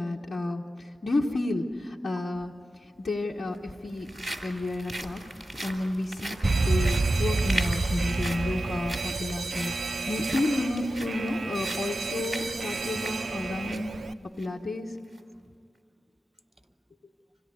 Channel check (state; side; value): normal; both; correlation 0.92